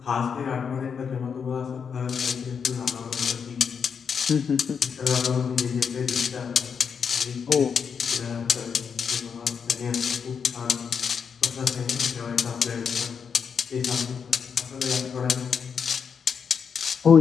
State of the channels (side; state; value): right; quieter; 6.5 dB